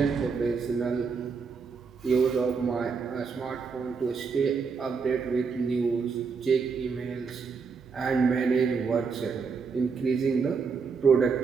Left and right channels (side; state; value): left; quieter; 5.3 dB